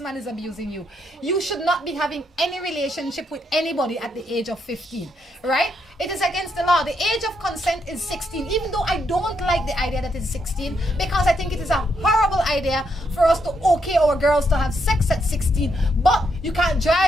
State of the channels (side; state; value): both; normal; correlation 0.78